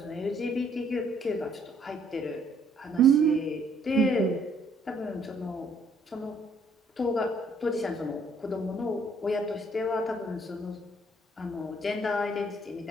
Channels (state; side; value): normal; both; correlation 0.65